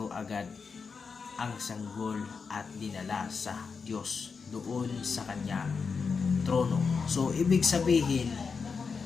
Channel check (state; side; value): quieter; right; 5.3 dB